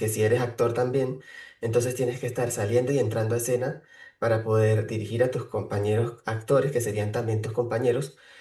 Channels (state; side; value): identical; both; correlation 1.00